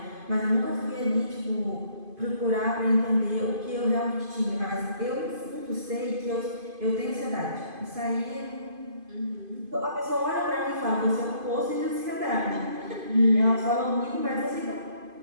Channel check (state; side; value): late; left; 2.5 ms